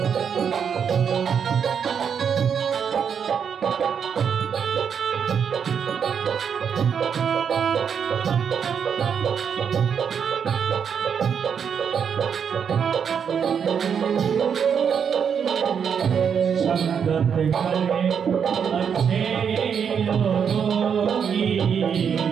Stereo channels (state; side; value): quieter; left; 7.3 dB